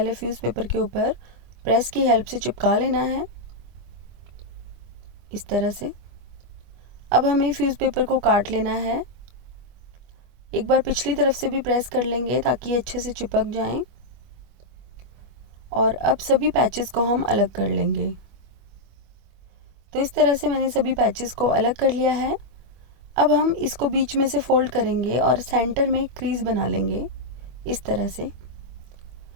फ्यूज़ पेपर के ऊपर प्रेस की हेल्प से चिपका लेना है, इस तरह से। अब हमें फ्यूज़ पेपर को काट लेना है। एक बार पिछली तरफ से भी प्रेस कर लेंगे ताकि ये अच्छे से चिपक जाएं। और अब सभी पैचेस को हम अलग कर लेंगे। तो इस तरह से मैंने सभी पैचेस को अलग कर लिया है। अब हम इसको बीच में से फोल्ड करेंगे और सेंटर में क्रीज बना लेंगे, इस तरह से।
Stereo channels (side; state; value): left; late; 25 ms